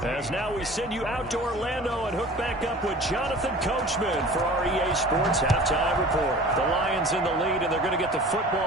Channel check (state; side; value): normal; both; correlation 0.42